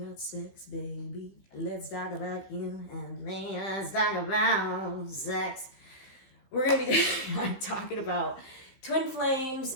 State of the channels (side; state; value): right; late; 16 ms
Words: sex, baby. Let's talk about you and me. Let's talk about sex. We're going to be talking about twin flames